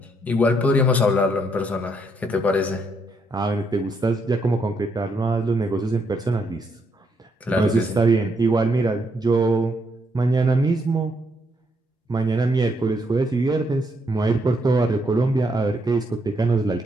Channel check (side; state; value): both; normal; correlation 0.75